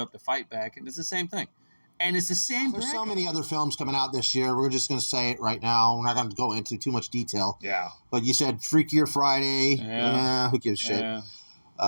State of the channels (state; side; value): inverted; both; correlation -1.00